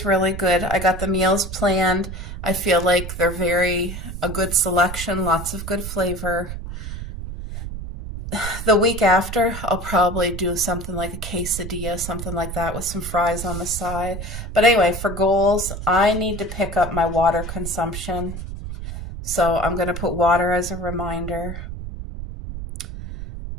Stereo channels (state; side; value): noise; right; rumble, 8 dB below the sound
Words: really good. I got the meals planned. I feel like they're a good selection, lots of good flavor. The week after, I'll probably do something like a quesadilla, something like that with some fries on the side. But anyway, for goals, I need to pick up my water consumption. So I'm going to put water as a reminder.